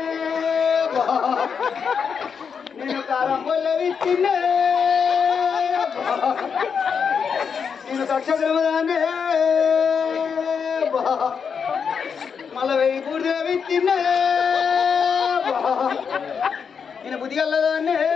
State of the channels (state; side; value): quieter; right; 6.4 dB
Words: నేను కారం పొల్ల విత్తిన్నా, నేను దక్షిణదానే మళ్ళా 1000 పూర్తిగా విత్తిన్నా, నేను బుద్ధిగల్లదాన్నే